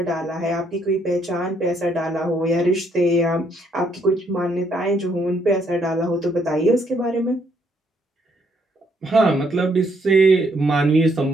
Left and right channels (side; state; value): both; normal; correlation 0.71